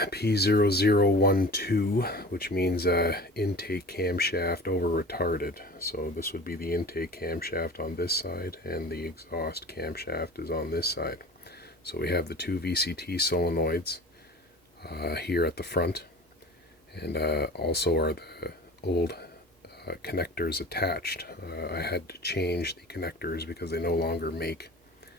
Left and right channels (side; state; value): both; normal; correlation 0.39